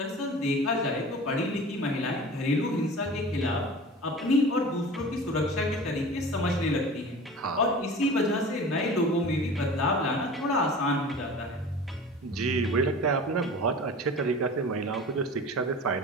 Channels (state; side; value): normal; both; correlation 0.38